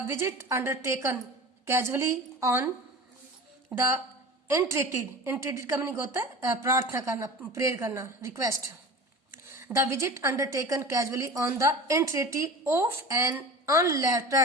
visit undertaken casually on the entreaty का मीनिंग होता है प्रार्थना करना, प्रेयर करना, request. The visit undertaken casually on the entreaty of an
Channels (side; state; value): both; normal; correlation 0.35